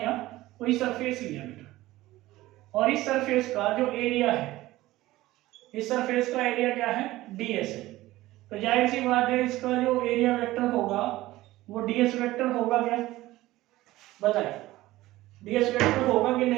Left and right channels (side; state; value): left; quieter; 17.1 dB